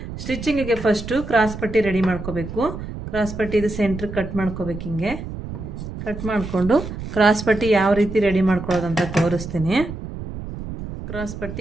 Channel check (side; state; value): right; noise; rumble, 9 dB below the sound